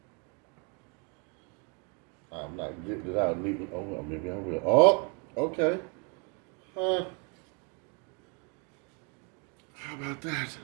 I'm not getting it out neatly. Oh, well, maybe I will. Oh, okay. How about that?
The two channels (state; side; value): quieter; left; 34.9 dB